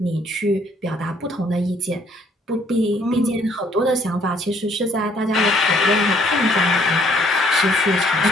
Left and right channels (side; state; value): both; normal; correlation 0.64